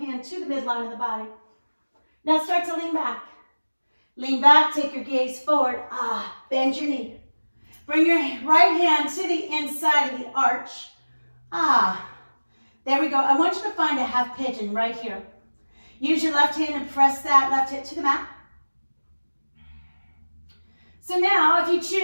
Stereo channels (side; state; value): both; inverted; correlation -1.00